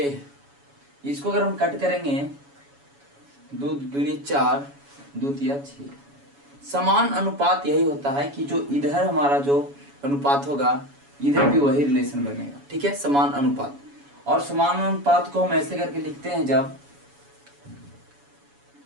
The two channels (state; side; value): late; left; 7.1 ms